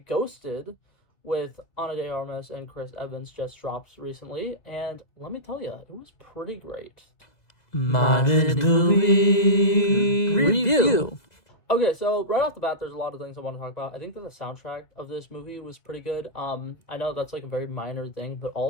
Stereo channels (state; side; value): late; right; 2.0 ms